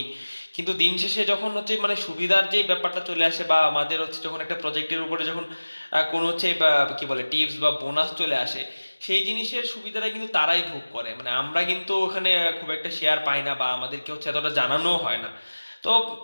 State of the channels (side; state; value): both; inverted; correlation -1.00